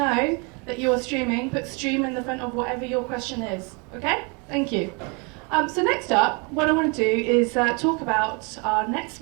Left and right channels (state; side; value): quieter; left; 32.4 dB